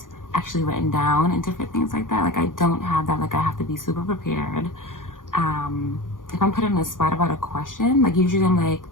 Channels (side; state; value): right; late; 0.89 ms